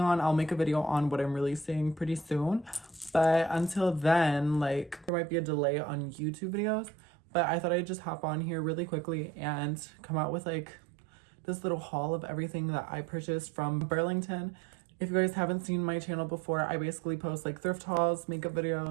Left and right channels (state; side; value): drops out; left; at 5.1 s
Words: on. I'll make a video on what I'm releasing pretty soon, but until then, like there might be a delay on YouTube videos, but I thought I'd just hop on here really quickly and come out with like this little haul of everything that I purchased from Burlington. If you guys haven't seen my channel before, I basically post like thrift hauls, makeup